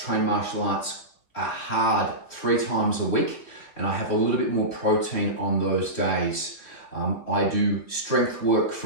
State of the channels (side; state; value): right; late; 3.2 ms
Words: train martial arts hard 3 times a week, and I have a little bit more protein on those days. I do strength work